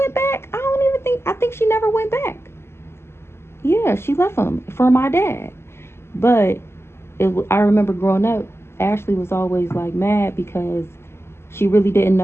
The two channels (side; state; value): right; late; 0.12 ms